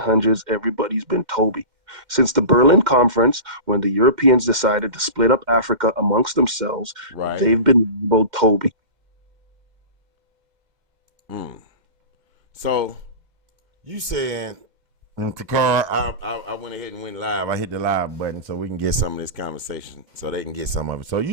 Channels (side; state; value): left; late; 2.1 ms